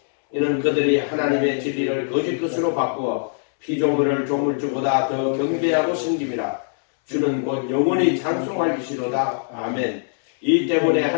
이는 그들이 하나님의 진리를 거짓 것으로 바꾸어 피조물을 조물주보다 더 경배하고 섬김이라. 주는 곧 영원히 찬송할 이시로다. 아멘. 이 때문에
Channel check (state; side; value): silent; right; 64 dB below the other